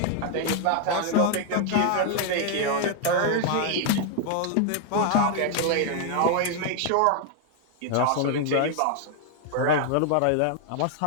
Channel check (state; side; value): different; both; correlation 0.00